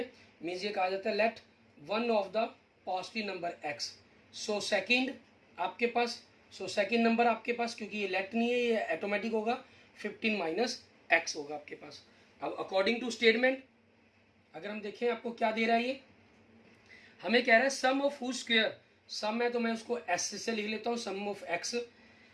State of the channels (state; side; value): identical; both; correlation 1.00